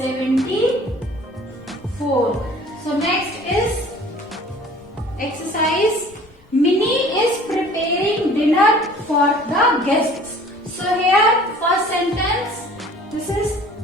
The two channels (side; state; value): both; normal; correlation 0.49